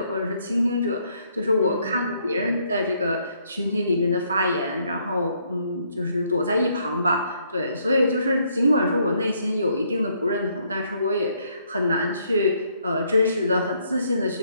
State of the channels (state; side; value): inverted; both; correlation -0.70